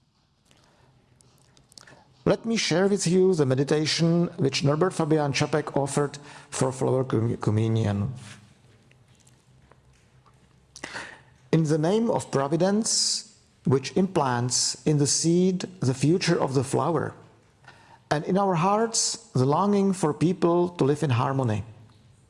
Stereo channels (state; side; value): identical; both; correlation 1.00